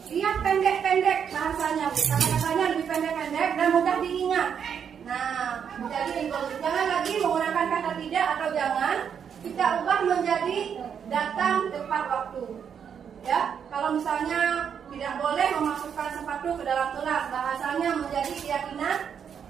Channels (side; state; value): left; quieter; 7.7 dB